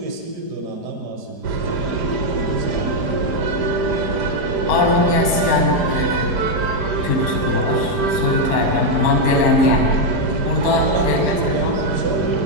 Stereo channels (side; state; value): left; late; 4.8 ms